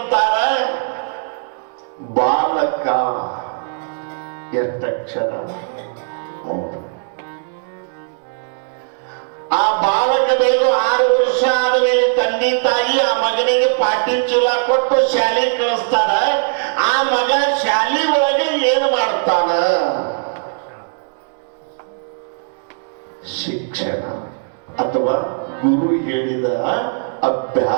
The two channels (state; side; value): silent; left; digital silence